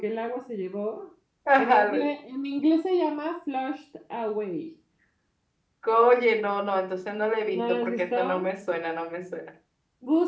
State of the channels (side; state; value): both; identical; correlation 1.00